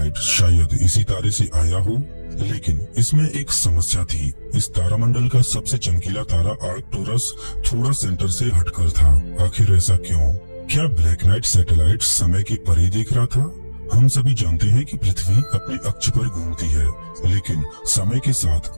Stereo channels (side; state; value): both; inverted; correlation -1.00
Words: शायद इसी तारे से आया हो, लेकिन इसमें एक समस्या थी। इस तारामंडल का सबसे चमकीला तारा आर्कटुरस थोड़ा सेंटर से हटकर था। आखिर ऐसा क्यों? क्या ब्लैक नाइट सैटेलाइट समय के परे देख रहा था? हम सभी जानते हैं कि पृथ्वी अपने अक्ष पर घूमती है, लेकिन समय के साथ